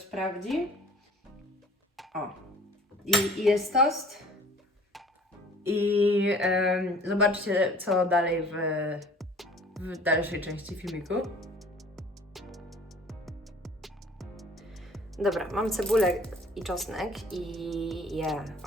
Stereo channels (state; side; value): normal; both; correlation 0.50